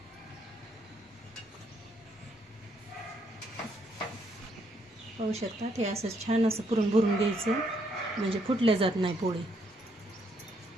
पाहू शकता हे असं छान असं पुरण भरून घ्यायचं म्हणजे फुटल्या जात नाही पोळी.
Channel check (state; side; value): normal; both; correlation 0.73